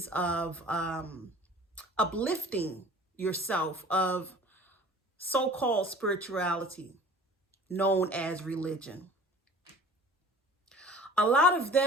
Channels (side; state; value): both; normal; correlation 0.46